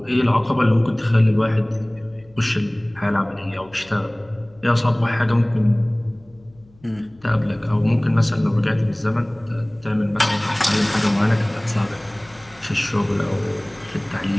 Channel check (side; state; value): left; noise; hum, 28 dB below the sound